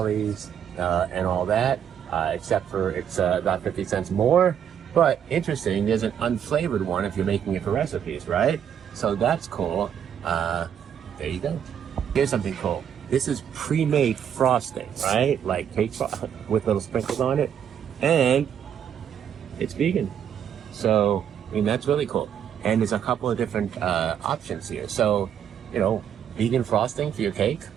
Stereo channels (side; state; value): left; quieter; 8.9 dB